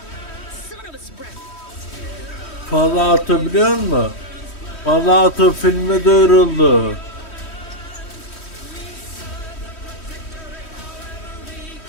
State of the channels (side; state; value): right; late; 3.1 ms